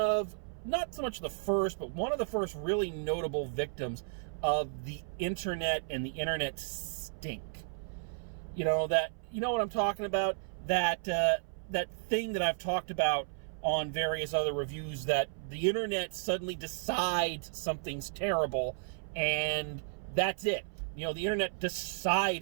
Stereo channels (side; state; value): left; silent; 55 dB below the other